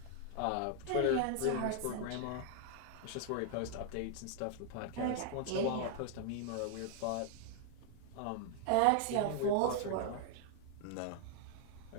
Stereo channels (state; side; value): different; both; correlation 0.00